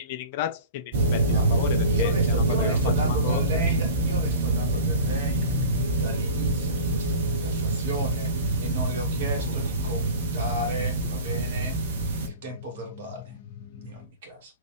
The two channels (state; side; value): inverted; both; correlation -0.37